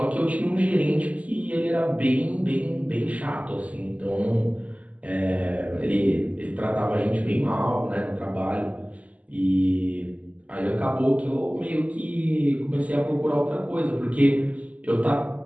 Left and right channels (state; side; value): late; left; 0.071 ms